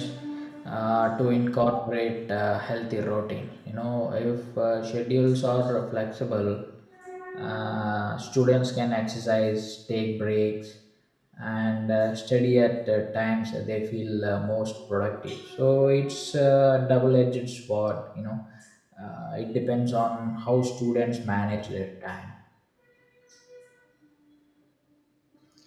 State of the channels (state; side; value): identical; both; correlation 1.00